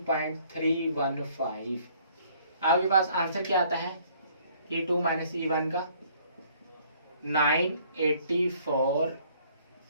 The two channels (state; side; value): inverted; both; correlation -0.61